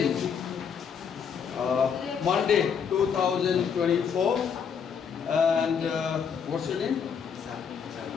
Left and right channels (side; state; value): right; quieter; 6.9 dB